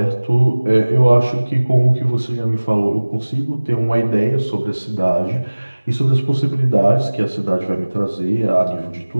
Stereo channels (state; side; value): inverted; both; correlation -1.00